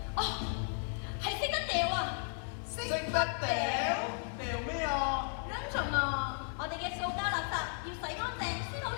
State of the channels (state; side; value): silent; right; 54 dB below the other